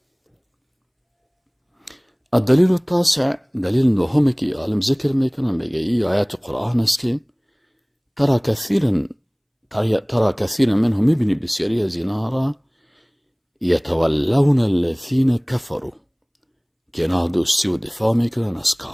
الدلیل التاسع، دلیل نهم که عالم ذکر میکنه، میگه این آیات قرآن است که ترى كثيرا منهم، میبینی بسیاری از اینا را یتولون الذین کفروا، که اینا دوستی و دفاع میکنن از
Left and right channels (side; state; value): both; identical; correlation 1.00